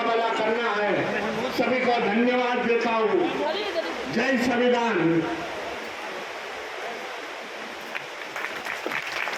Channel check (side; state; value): both; identical; correlation 1.00